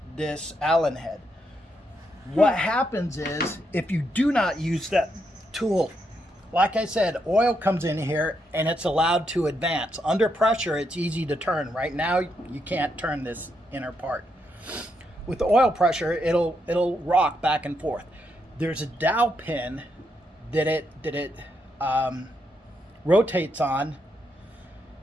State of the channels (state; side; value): normal; both; correlation 0.80